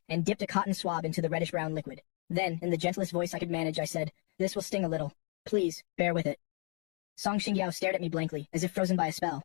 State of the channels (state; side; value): quieter; right; 34.5 dB